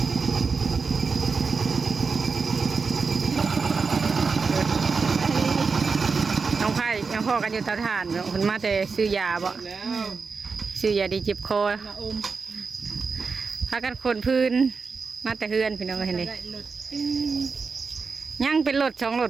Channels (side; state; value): left; quieter; 4.8 dB